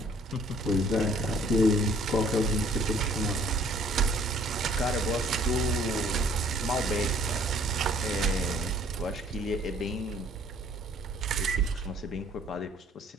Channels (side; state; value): both; normal; correlation 0.58